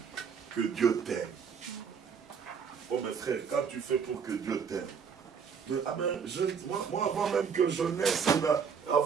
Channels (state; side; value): quieter; left; 6.5 dB